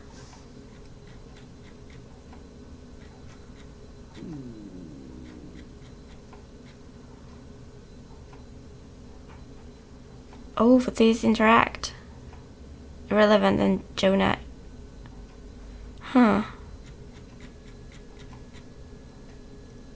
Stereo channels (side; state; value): both; identical; correlation 1.00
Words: Oh, but these interact. Irrelevant and Jonah. Huh.